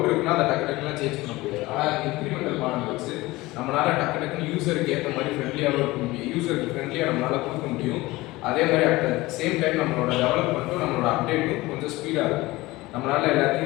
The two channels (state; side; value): quieter; right; 20.0 dB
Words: இருக்குன்னா அதை டக்குலாம் சேஞ்ச் பண்ண முடியாது. ஆனால் இன்க்ரிமெண்டல் மாடல் வச்சு நம்மளால் டக்குன்னு யூஸருக்கு ஏற்ற மாதிரி ஃப்ரெண்ட்லியாகவும் இருக்க முடியும். யூஸருக்கு ஃப்ரெண்ட்லியாக நம்மளால் கொடுக்க முடியும். அதே மாதிரி அட் சேம் டைம் நம்மளோட டெவலப்மெண்ட்டும் நம்மளோட அப்டேட்டும் கொஞ்சம் ஸ்பீடாக இருக்கும். நம்மளால்